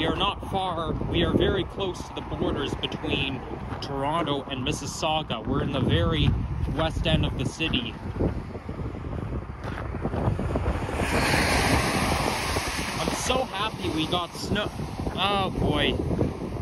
are not far, we are very close to the borders between Toronto and Mississauga. We're in the very west end of the city. I'm so happy we got snow. Oh boy.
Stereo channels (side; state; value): both; identical; correlation 1.00